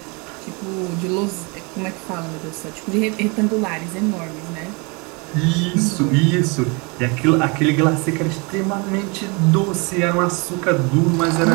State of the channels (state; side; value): quieter; left; 30.1 dB